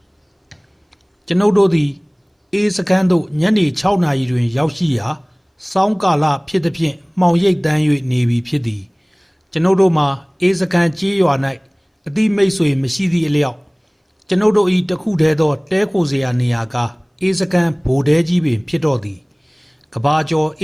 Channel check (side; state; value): both; identical; correlation 1.00